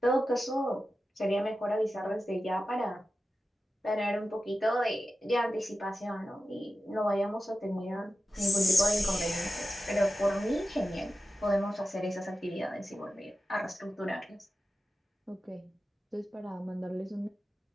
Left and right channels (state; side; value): normal; both; correlation 0.92